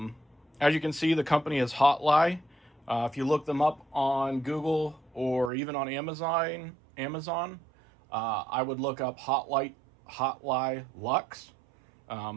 you can see, the company is Hotligh. If you look them up on Google or even on Amazon, I would look up Hotligh Lux.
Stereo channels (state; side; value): drops out; left; at 5.5 s